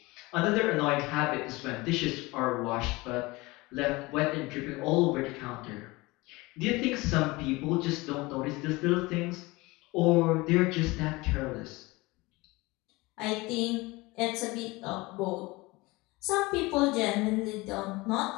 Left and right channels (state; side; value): quieter; right; 22.6 dB